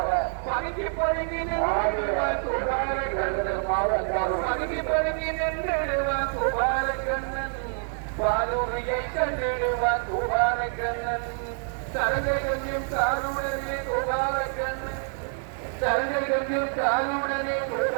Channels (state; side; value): silent; left; 60 dB below the other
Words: பதுங்கி பதுங்கி நின்றுடுவான் கோபாலக்கண்ணன் பாலூரியை கண்டிடுவான் கோபாலக்கண்ணன் சரகை கொஞ்சம் காலுடனே கோபாலக்கண்ணன் சரகை கொஞ்சம் காலுடனே